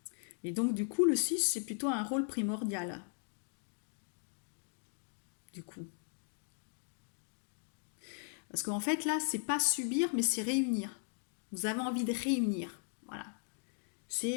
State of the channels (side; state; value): right; silent; 53 dB below the other